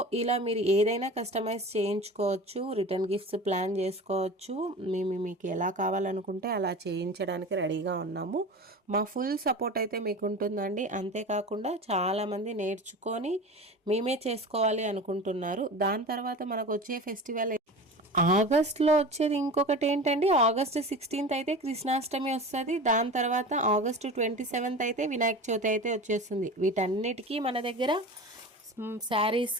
ఇలా మీరు ఏదైనా కస్టమైజ్ చేయించుకోవచ్చు, రిటర్న్ గిఫ్ట్స్ ప్లాన్ చేసుకోవచ్చు. మీకు ఎలా కావాలనుకుంటే అలా చేయించడానికి రెడీగా ఉన్నాము. మా ఫుల్ సపోర్ట్ అయితే మీకు ఉంటుందండి. అంతేకాకుండా చాలామంది నేర్చుకొని మేమే చేసుకోవాలి అనుకుంటున్నారు. దాని తర్వాత మనకు వచ్చే ఫెస్టివల్ ఆగస్ట్లో వచ్చేది ఇంకొకటి ఏంటండి, ఆగస్ట్ 16th అయితే కృష్ణాష్టమి వస్తుంది. దాని తర్వాత ఆగస్టు 27th అయితే వినాయక చవితి అయితే వచ్చేస్తుంది. వీటన్నిటికీ మన దగ్గర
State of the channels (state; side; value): normal; both; correlation 0.33